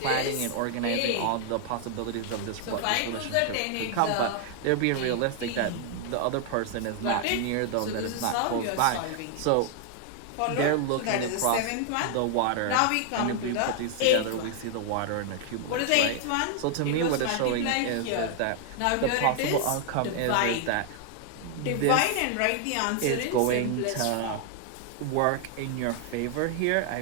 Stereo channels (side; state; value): both; different; correlation 0.00